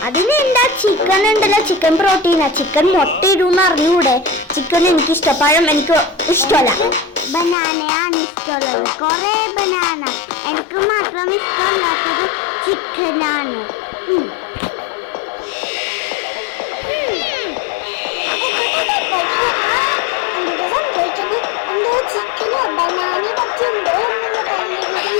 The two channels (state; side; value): drops out; right; at 7.6 s